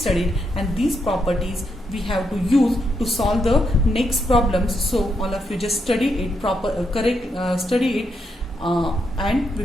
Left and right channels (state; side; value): normal; both; correlation 0.80